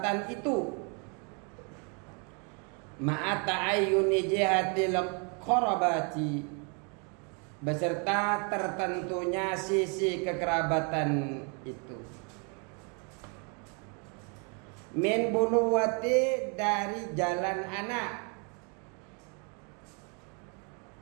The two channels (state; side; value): quieter; left; 36.3 dB